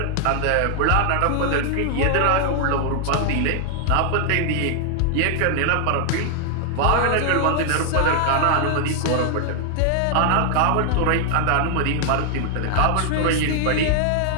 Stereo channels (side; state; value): both; different; correlation 0.00